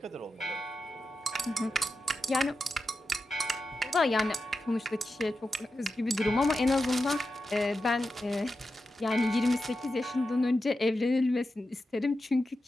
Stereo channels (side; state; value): both; normal; correlation 0.90